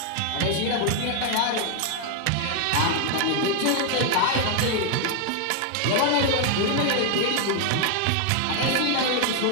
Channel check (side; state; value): both; different; correlation 0.00